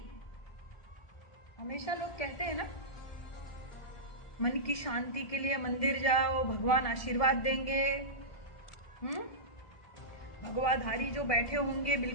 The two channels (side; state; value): right; late; 1.7 ms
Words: हमेशा लोग कहते हैं ना, मन की शांति के लिए मंदिर जाओ, भगवान आशीर्वाद देंगे। भगवाधारी जो बैठे होंगे